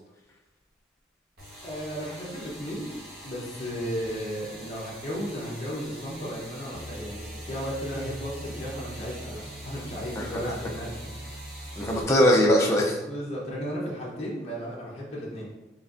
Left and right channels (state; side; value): normal; both; correlation 0.59